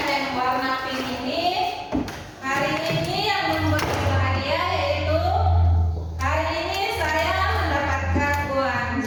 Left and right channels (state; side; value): identical; both; correlation 1.00